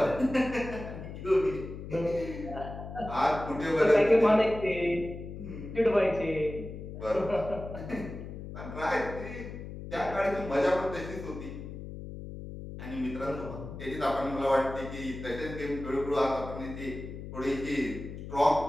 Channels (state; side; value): noise; left; hum, 10 dB below the sound